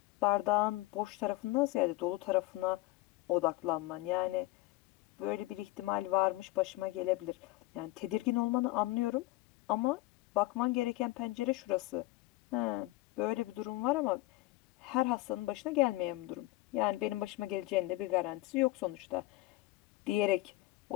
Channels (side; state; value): right; quieter; 19.2 dB